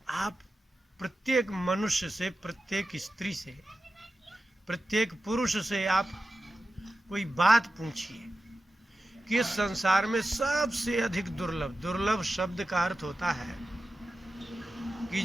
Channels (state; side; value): normal; both; correlation 0.93